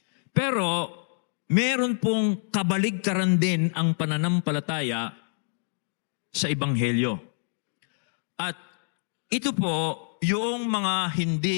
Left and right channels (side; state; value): right; silent; digital silence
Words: Pero, meron pong kabaligtaran din ang pananampalataya sa Ebanghelyo. At ito po, yung mga